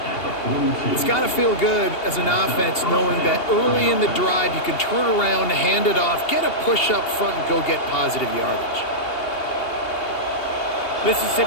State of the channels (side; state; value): right; late; 2.8 ms